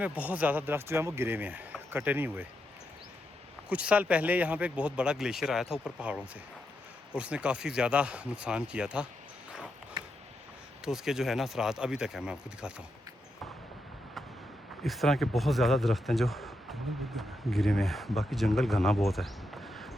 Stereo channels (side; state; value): both; normal; correlation 0.84